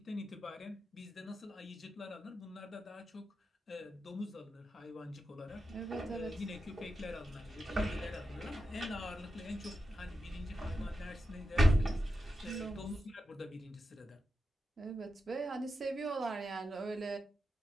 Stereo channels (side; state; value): both; normal; correlation 0.89